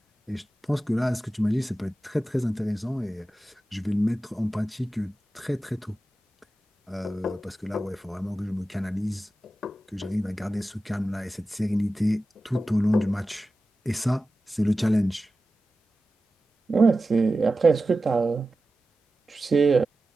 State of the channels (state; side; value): normal; both; correlation 0.94